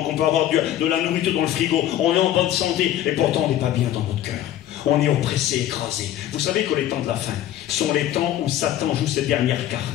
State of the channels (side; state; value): right; quieter; 12.2 dB